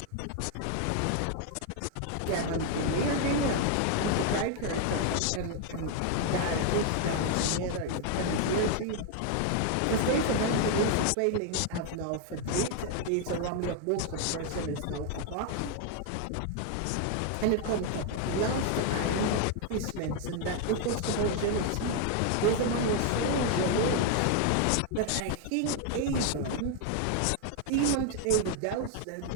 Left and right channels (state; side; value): different; both; correlation 0.00